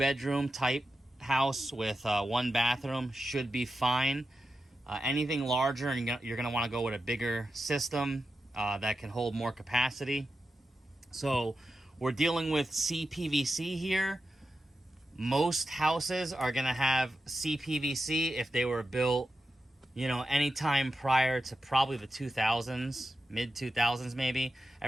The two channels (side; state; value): both; normal; correlation 0.90